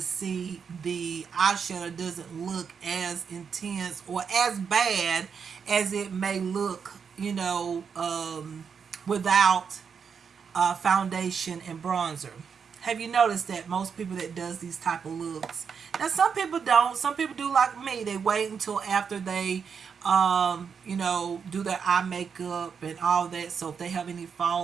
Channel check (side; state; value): left; quieter; 6.4 dB